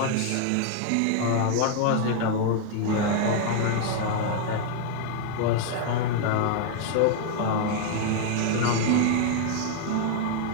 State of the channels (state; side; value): different; both; correlation 0.00